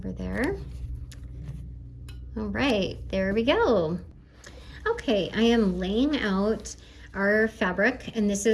there. All right, there we go. Okay, I am laying out our fabric, and this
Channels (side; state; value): both; identical; correlation 1.00